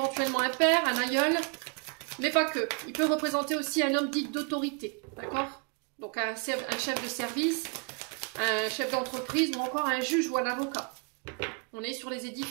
un père, un aïeul, mais pas que. Il peut représenter aussi un homme dit d'autorité, d'accord? Donc un chef de service, un chef d'entreprise ou encore un juge ou un avocat. On est sur les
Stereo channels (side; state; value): left; quieter; 35.6 dB